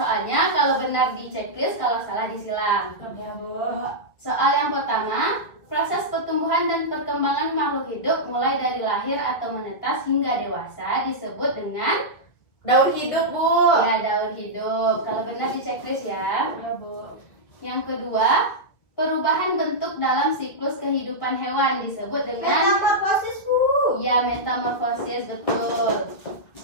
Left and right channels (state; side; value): late; right; 2.0 ms